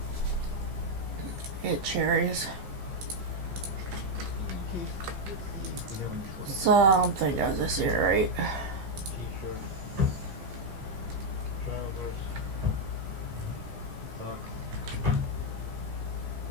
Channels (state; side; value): late; left; 15 ms